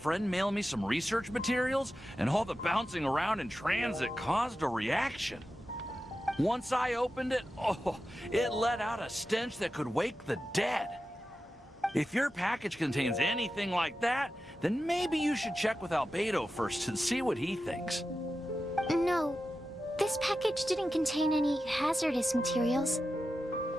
mail me some research materials, and all the bouncing around in transit caused a reaction. Once I opened it, it let out a stench that could wake the dead. If your package contains anything like that, then maybe you should check with Albedo first and see what he thinks. No, this package didn't contain any hazardous materials.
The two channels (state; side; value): normal; both; correlation 0.92